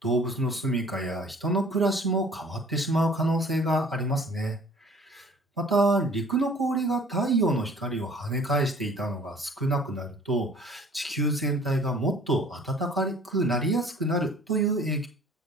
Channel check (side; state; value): both; normal; correlation 0.51